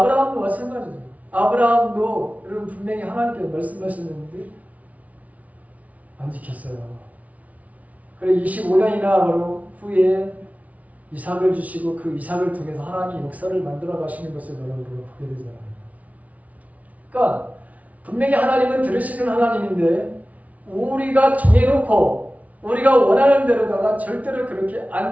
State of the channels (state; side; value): late; left; 0.069 ms